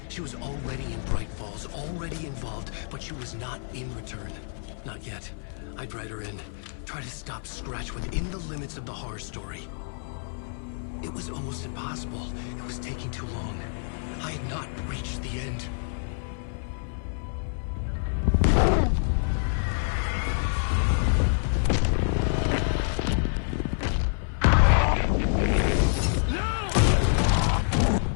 She was already in Bright Falls, already involved, but she was not in Return. Not yet. I'd write her in. Try to stop Scratch within the limits of the horror story. It was almost impossible. It was taking too long. I had not reached the end.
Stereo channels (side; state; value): right; silent; 58 dB below the other